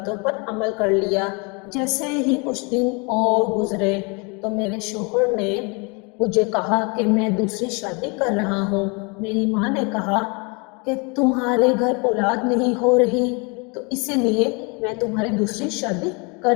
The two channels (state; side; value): quieter; right; 31.4 dB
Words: پر عمل کر لیا۔ جیسے ہی کچھ دن اور گزرے تو میرے شوہر نے مجھے کہا کہ میں دوسری شادی کر رہا ہوں۔ میری ماں نے کہا کہ تمہارے گھر اولاد نہیں ہو رہی تو اسی لیے میں تمہاری دوسری شادی